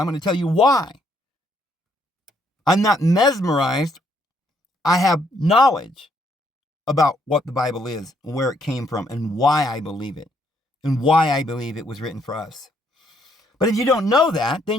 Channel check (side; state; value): both; normal; correlation 0.70